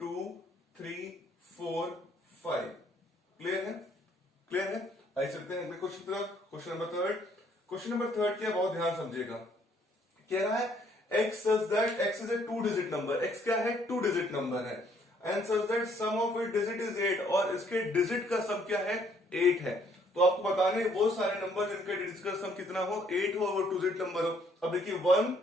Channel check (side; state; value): both; normal; correlation 0.65